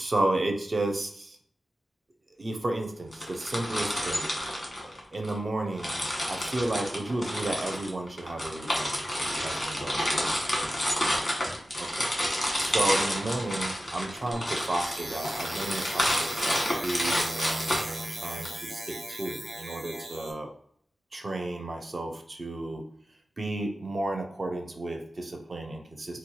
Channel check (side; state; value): both; normal; correlation 0.93